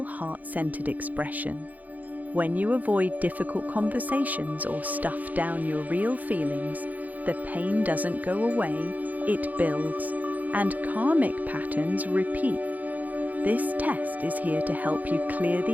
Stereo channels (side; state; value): left; late; 0.080 ms